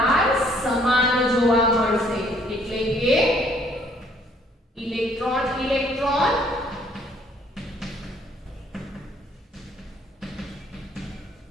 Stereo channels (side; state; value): both; normal; correlation 0.62